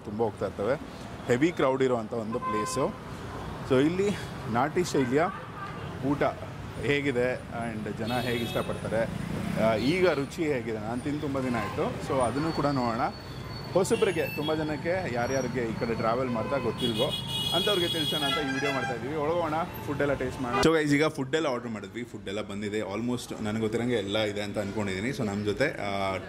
ತುಂಬ ಹೋಗ್ತಾ ಇರ್ತವೆ, ಹೆವಿ ಕ್ರೌಡ್ ಇರೋವಂಥ ಒಂದು ಪ್ಲೇಸು. ಸೊ ಇಲ್ಲಿ ನಾಟಿ ಶೈಲಿಯ ಊಟ ಹೇಗಿದೆ ಆ್ಯಂಡ್ ಜನ ಹೇಗೆ ಇಷ್ಟಪಡ್ತಾರೆ, ಈಗ ರುಚಿ ಹೇಗಿದೆ, ನಾನು ತಿಂದು ತುಂಬ ದಿನ ಆಯಿತು. ಸೊ ಅದನ್ನು ಕೂಡ ನೋಡೋಣ. ಹೊಸಬ್ರಿಗೆ ತುಂಬ ಜನಕ್ಕೆ ಯಾರ್ಯಾರಿಗೆ ಈ ಕಡೆ ಟ್ರಾವೆಲ್ ಮಾಡ್ತಾ ಗೊತ್ತಿಲ್ವೋ ಅಂಥವ್ರಿಗೆ ತಿಳಿಸೋಣ ಅಂತ ಈ ವಿಡಿಯೋ ಮಾಡ್ತಾಯಿದ್ದೀವಿ. ಒಳಗೋಣ, ಫುಡ್ಡೆಲ್ಲ ಟೇಸ್ಟ್ ಮಾಡೋಣ. ಸೊ ಗೈಸ್, ಈಗ ಫುಡ್ಡೆಲ್ಲ ಆರ್ಡ್ರ್ ಮಾಡಿದ್ವಿ, ಫುಡ್ಡೆಲ್ಲ ಬಂದಿದೆ. ಆಲ್ಮೋಸ್ಟ್ ನನಗೆ ಗೊತ್ತಿರೋಂಗೆ ಎಲ್ಲ ಇದೆ ಅಂತ ಅಂದ್ಕೊಂಡಿದ್ದೀನಿ. ಸೊ ನಮ್ಮ ಜೊತೆ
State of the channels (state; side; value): identical; both; correlation 1.00